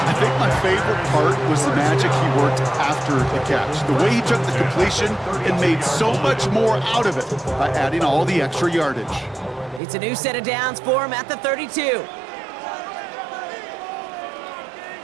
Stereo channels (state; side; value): drops out; left; at 9.8 s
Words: I think my favorite part was the magic he worked after the catch. The way he took the completion and made so much more out of it by adding all the extra yardage. It's a new set of downs for him at the 32.